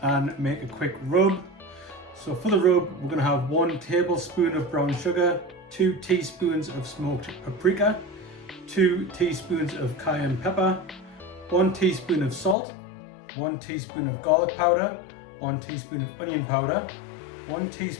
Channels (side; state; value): right; drops out; at 12.6 s